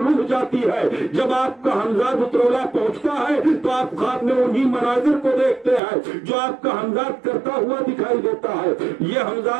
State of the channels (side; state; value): left; drops out; at 5.8 s